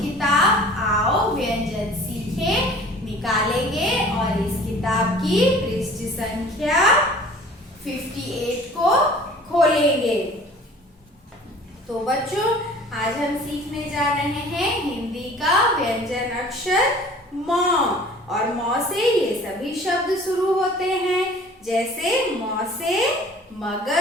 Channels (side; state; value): both; normal; correlation 0.48